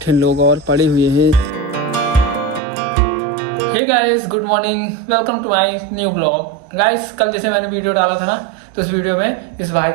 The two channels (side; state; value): left; drops out; at 2.6 s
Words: लोग और पढ़े हुए हैं। Hey guys, good morning, welcome to my new blog. Guys, कल जैसे मैंने वीडियो डाला था ना, तो उस वीडियो में इस भाई